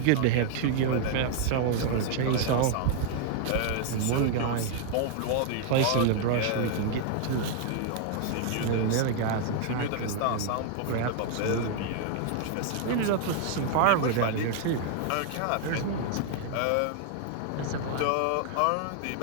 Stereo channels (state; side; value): different; both; correlation 0.00